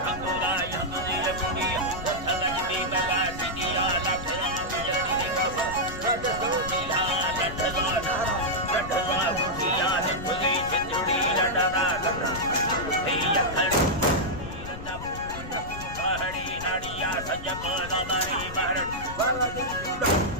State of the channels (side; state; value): left; noise; rumble, 11 dB below the sound